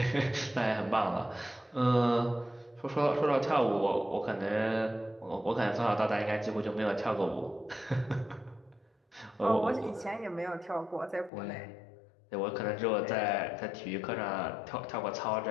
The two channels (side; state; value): right; drops out; at 11.3 s